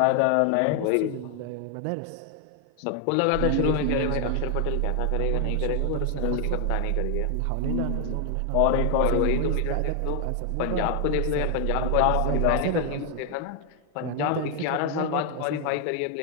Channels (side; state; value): both; different; correlation 0.00